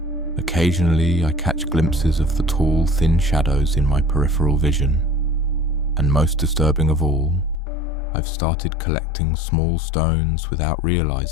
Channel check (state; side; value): drops out; right; at 7.6 s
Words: Occasionally I catch glimpses of the tall, thin shadows in my peripheral vision. And most disturbing of all, I've started collecting small stones without